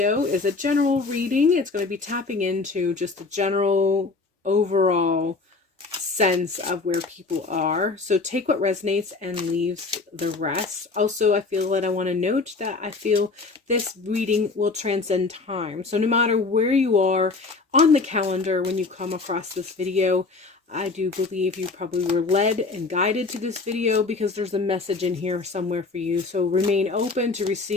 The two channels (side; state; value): right; quieter; 4.0 dB